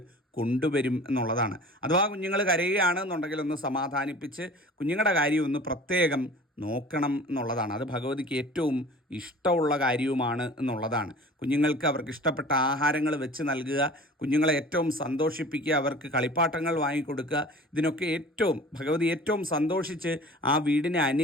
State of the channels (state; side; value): normal; both; correlation 0.43